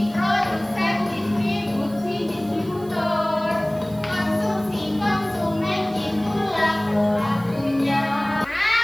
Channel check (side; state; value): right; noise; hiss, 24 dB below the sound